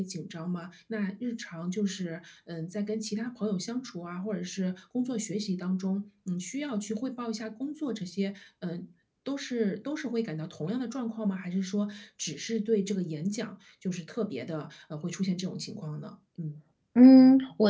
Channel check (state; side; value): identical; both; correlation 1.00